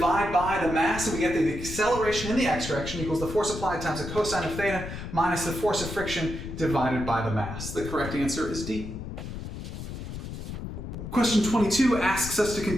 by the mass and we get the acceleration in the x direction equals the force applied times the cosine of theta minus the force of friction divided by the mass. The correct answer is D. Question 22 asks us to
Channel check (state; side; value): noise; left; rumble, 8 dB below the sound